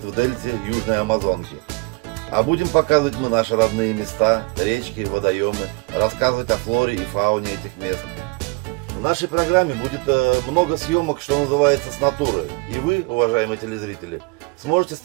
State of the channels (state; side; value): quieter; left; 29.5 dB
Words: в дельте Южной Амазонки. А будем показывать мы наши родные места, речки, водоемы, рассказывать о флоре и фауне этих мест. В нашей программе будет много съемок, что называется, с натуры. И вы, уважаемые телезрители, сможете